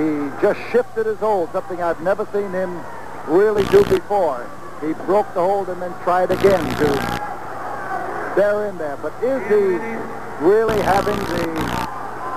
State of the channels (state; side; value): identical; both; correlation 1.00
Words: just shifted his hold, something I've never seen him really do before. He broke the hold and then tried again to bear in there. But is he really having the